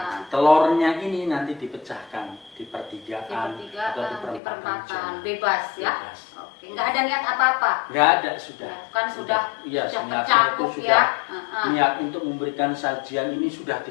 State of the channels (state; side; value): drops out; right; at 4.4 s